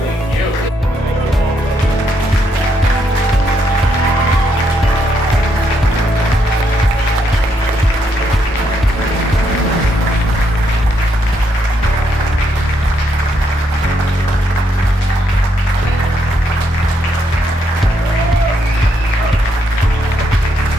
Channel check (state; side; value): normal; both; correlation 0.76